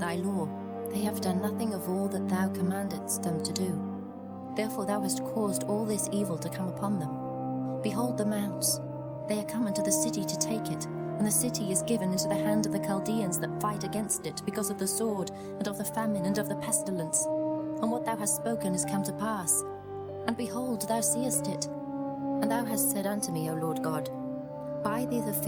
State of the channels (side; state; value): both; identical; correlation 1.00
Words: law. They have done nothing of all that thou commandedst them to do. Therefore thou hast caused all this evil to come upon them. Behold the mounts, they are come into the city to take it, and the city is given into the hand of the Chaldeans that fight against it, because of the sword, and of the famine, and of the pestilence. And what thou hast spoken is come to pass. And behold, thou seest it. And thou hast said unto me, O Lord God, Buy thee the